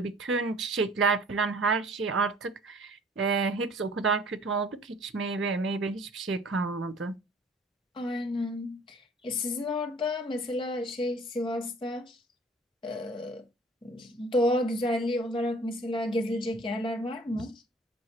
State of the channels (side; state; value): both; normal; correlation 0.51